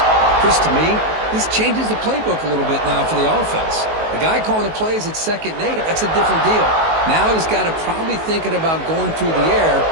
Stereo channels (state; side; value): late; left; 19 ms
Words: Chris, to me, this changes the playbook a little bit now for the offense. The guy calling the plays at 2nd and 8, that's a different deal. Now he's got to probably thinking about going through the air